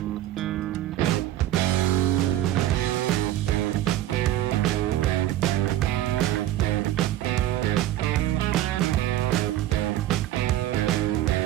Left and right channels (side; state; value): left; quieter; 13.6 dB